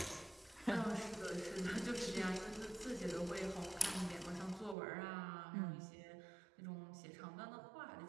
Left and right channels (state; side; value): drops out; left; at 4.8 s